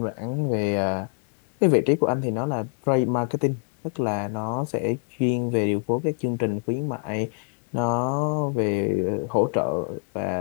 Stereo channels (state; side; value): silent; right; 62 dB below the other